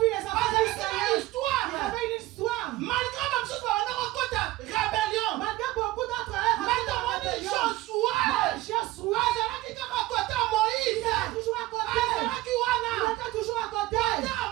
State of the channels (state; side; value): quieter; left; 17.7 dB